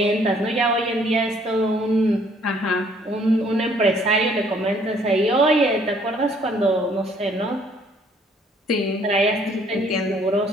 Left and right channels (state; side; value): normal; both; correlation 0.62